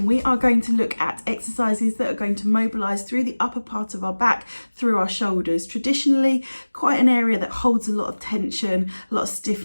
We are going to look at exercises that are going to mobilise through the upper part of our back, through our shoulders. Traditionally, quite an area that holds a lot of tension, a lot of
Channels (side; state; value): both; inverted; correlation -1.00